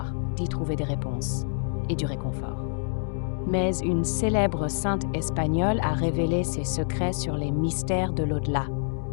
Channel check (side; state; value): right; silent; 60 dB below the other